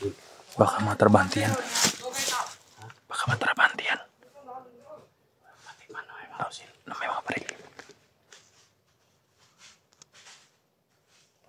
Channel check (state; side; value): identical; both; correlation 1.00